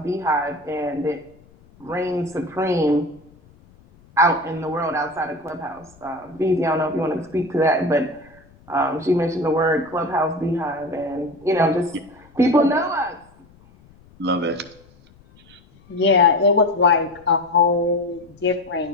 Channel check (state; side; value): noise; left; rumble, 27 dB below the sound